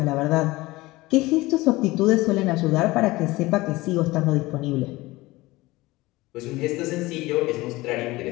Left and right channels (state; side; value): quieter; right; 20.2 dB